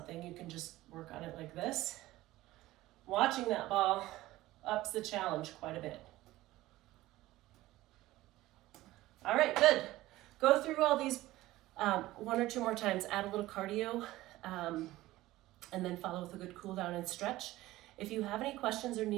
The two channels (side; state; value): left; quieter; 17.0 dB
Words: you can just work on it like this. Watching that ball ups the challenge quite a bit. All right, good. Go through all these 1 or 2 more times, add a little cardio, and then follow with a good cool down and stretch. If you have any questions or